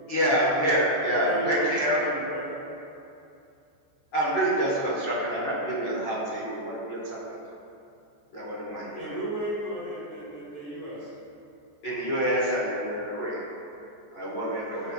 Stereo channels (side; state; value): right; late; 14 ms